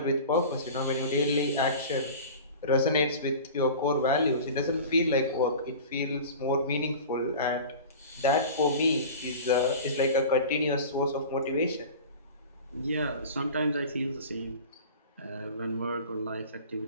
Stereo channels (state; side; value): inverted; both; correlation -0.36